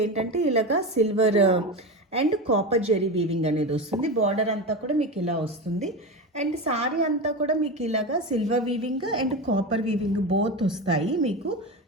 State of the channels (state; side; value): normal; both; correlation 0.21